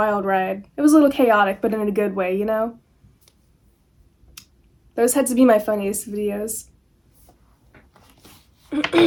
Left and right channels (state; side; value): identical; both; correlation 1.00